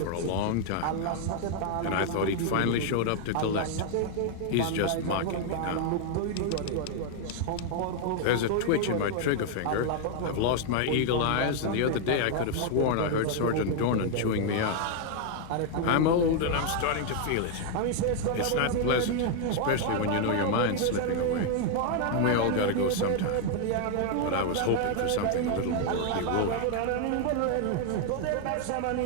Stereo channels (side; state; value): both; different; correlation 0.00